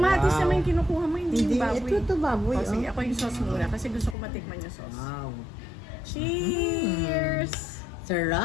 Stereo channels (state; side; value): drops out; right; at 4.2 s